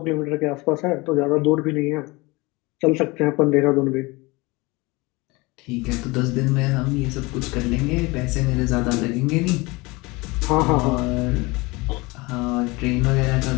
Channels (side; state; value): right; quieter; 24.1 dB